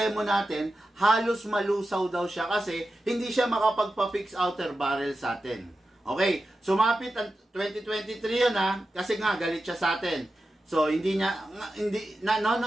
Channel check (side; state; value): both; normal; correlation 0.91